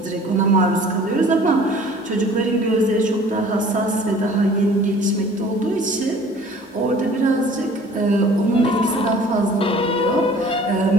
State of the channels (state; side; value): normal; both; correlation 0.49